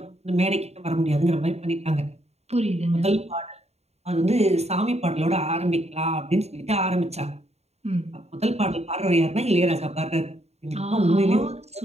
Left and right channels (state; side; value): late; left; 0.31 ms